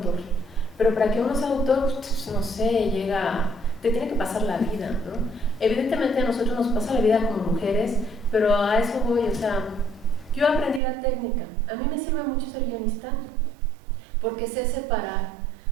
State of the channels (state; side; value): drops out; left; at 10.8 s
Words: Pero para que uno sea autor, pues, no sé, te tiene que pasar la vida, ¿no? Evidentemente a nosotros nos pasa la vida como mujeres, pero a eso voy, o sea, yo aprendí la técnica. A mí me sirve mucho ser guionista, porque sé separar.